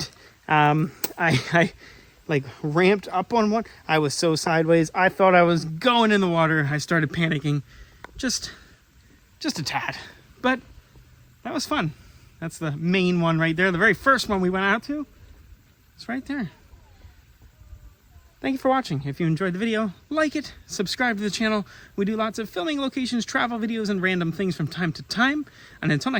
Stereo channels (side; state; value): both; identical; correlation 1.00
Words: I like ramped up on one. I was so sideways. I thought I was going in the water. I started panicking just a tad. But that was fun. That's the main one right there. The very first one we went out to. It's right there. Thank you for watching. If you enjoyed the video, like it, subscribe to the channel. We do lots of filming locations, travel videos, and random things from time to time. And until